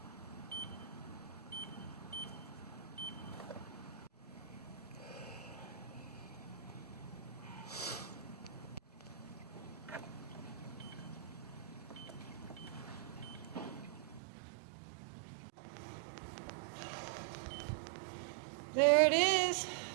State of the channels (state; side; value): drops out; left; at 14.2 s